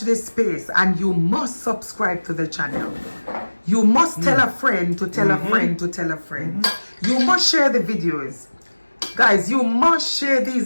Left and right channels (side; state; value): both; inverted; correlation -1.00